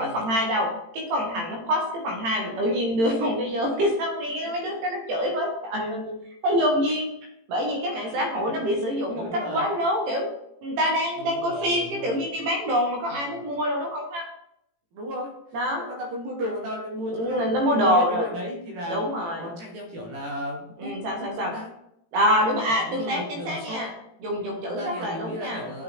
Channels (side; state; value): left; late; 18 ms